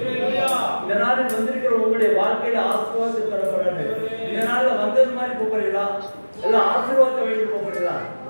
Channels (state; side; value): inverted; both; correlation -1.00